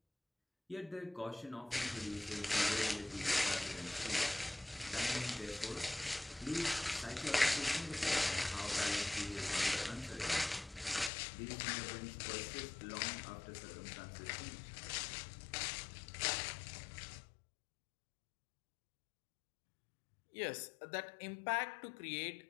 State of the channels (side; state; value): right; drops out; at 11.1 s